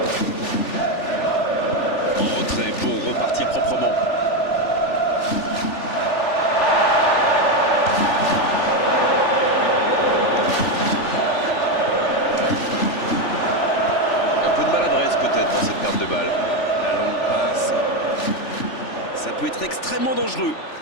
En retrait pour repartir proprement. Un peu de maladresse peut-être dans cette perte de balle. La longue passe. Ça peut être extrêmement dangereux.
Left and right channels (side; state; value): right; late; 3.4 ms